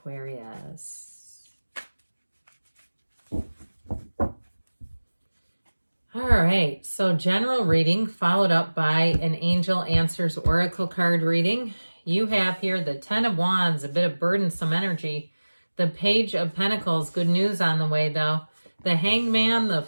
All right, so general reading followed up by an Angel Answers Oracle card reading. You have here the Ten of Wands, a bit of burdensome energy. The Page of Pentacles, good news on the way though. The Hangman, the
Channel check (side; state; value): both; inverted; correlation -1.00